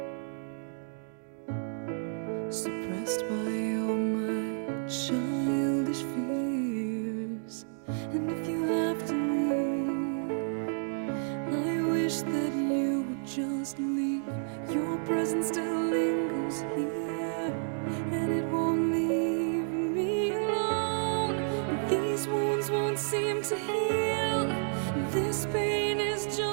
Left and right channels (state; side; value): silent; left; digital silence